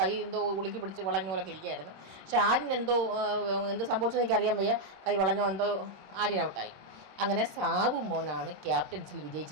എന്തോ ഉളുക്കി പിടിച്ച് വളഞ്ഞ പോലൊക്കെ ഇരിക്കുകയായിരുന്നു. പക്ഷെ ആര്യൻ എന്ത് സംഭവിച്ചെന്ന് എനിക്കറിയാൻ വയ്യ. കൈ വളഞ്ഞോ എന്തോ ആര്യൻ ഔട്ടായി. അങ്ങനെ സാവുമോനാണ് ക്യാപ്റ്റൻസിൽ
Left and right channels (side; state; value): left; late; 26 ms